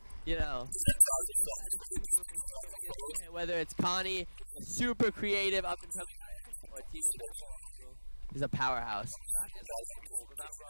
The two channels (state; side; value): inverted; both; correlation -1.00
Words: you know, whether it's Connie, super creative, up and coming, or he's a powerhouse.